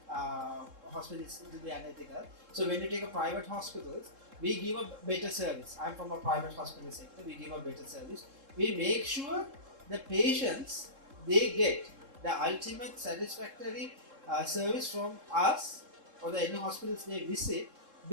hospitals; it will be unethical. So, when you take a private hospitals, we give a better service. I'm from a private hospital sector. We give a better service. We make sure the patients they get the ultimate satisfactory service from us or the any hospitals they visit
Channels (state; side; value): late; left; 3.7 ms